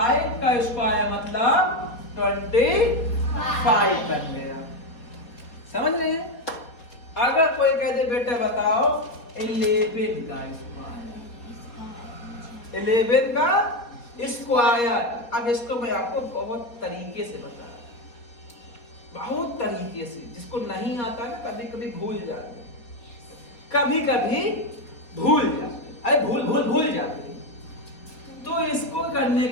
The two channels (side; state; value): right; late; 4.0 ms